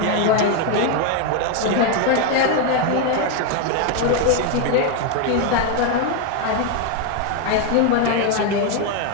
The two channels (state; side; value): different; both; correlation 0.01